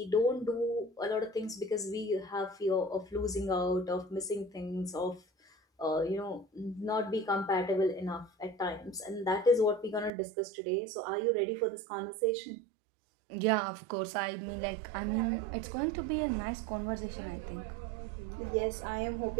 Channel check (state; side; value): drops out; left; at 10.1 s